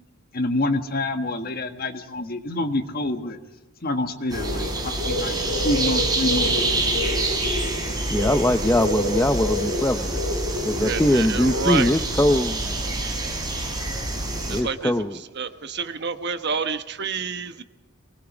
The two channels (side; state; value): both; normal; correlation 0.50